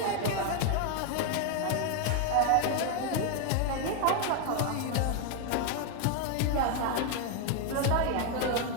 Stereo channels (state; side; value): different; both; correlation 0.01